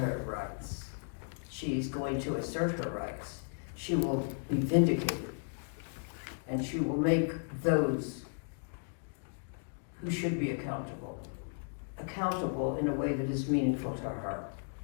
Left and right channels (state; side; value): silent; right; digital silence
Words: rights. She's going to assert her rights. She will be vindicated. And she will make those who should be accountable in a way that is meaningful to her.